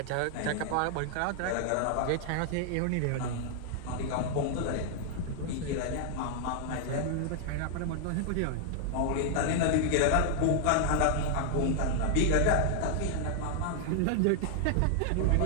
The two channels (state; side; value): different; both; correlation 0.00